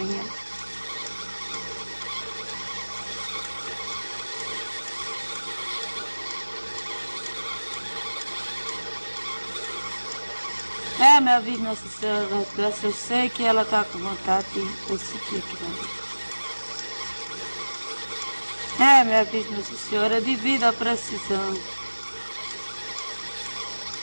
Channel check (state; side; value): inverted; both; correlation -1.00